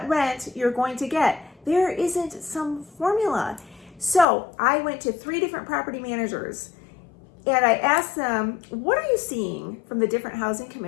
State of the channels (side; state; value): right; drops out; at 4.2 s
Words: rent you're going to get. There isn't some formula. So I went to 3 different property managers and I asked them, what are you seeing from the different housing